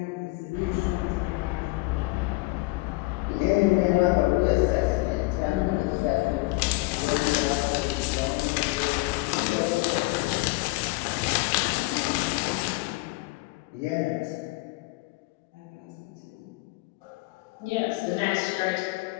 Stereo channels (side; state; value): right; quieter; 23.8 dB